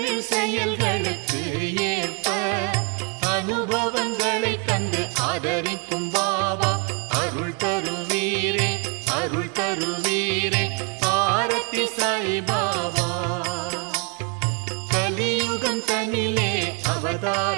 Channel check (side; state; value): left; quieter; 35.0 dB